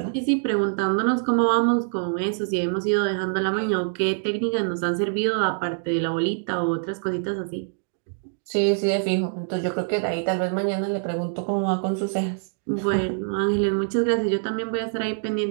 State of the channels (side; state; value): left; silent; digital silence